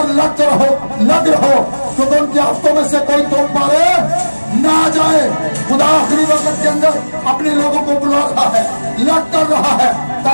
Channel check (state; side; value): inverted; both; correlation -1.00